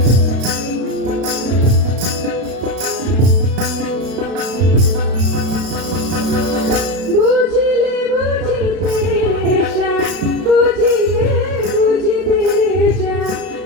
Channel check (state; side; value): late; left; 32 ms